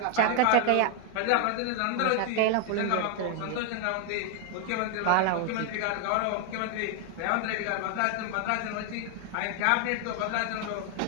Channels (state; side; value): different; both; correlation 0.00